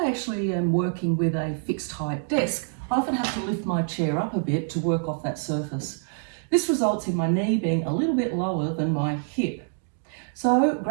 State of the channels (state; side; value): silent; left; 61 dB below the other